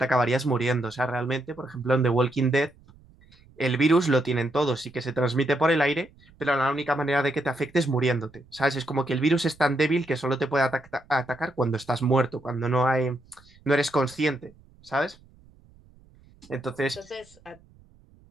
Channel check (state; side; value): noise; right; rumble, 28 dB below the sound